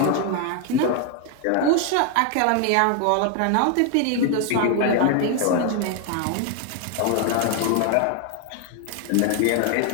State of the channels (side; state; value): both; different; correlation 0.01